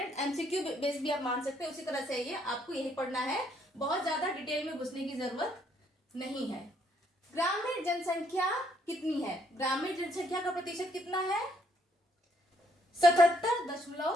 एमसीक्यू बेस भी आप मान सकते हैं। उसी तरह से ये आपको यही पढ़ना है, बहुत ज्यादा डिटेल में घुसने की जरूरत नहीं है। ग्रामीण जनसंख्या कितनी है? ग्रामीण जनसंख्या का प्रतिशत कितना है?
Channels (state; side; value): normal; both; correlation 0.70